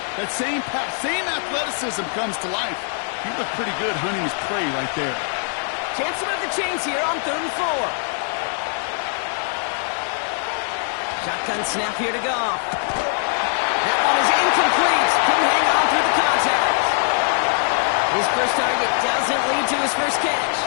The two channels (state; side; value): silent; right; 56 dB below the other